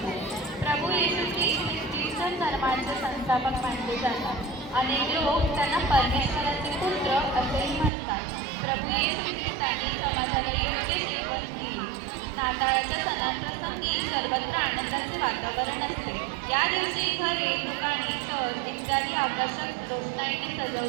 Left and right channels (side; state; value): left; drops out; at 7.9 s